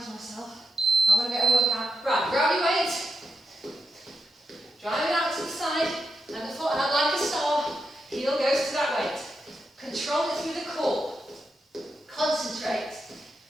myself. I want to get a workout. Right, grab your weight, drive it out to the side, and the foot out like a star. Heel goes to that weight. Control it through the core. Concentrate.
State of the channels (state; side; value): normal; both; correlation 0.86